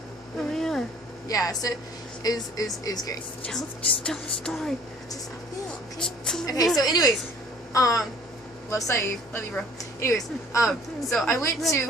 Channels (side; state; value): both; normal; correlation 0.54